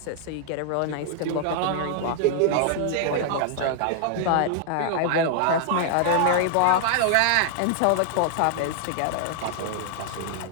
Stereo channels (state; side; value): different; both; correlation -0.01